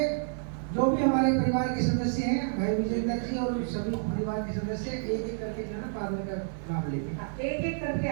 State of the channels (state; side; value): silent; left; digital silence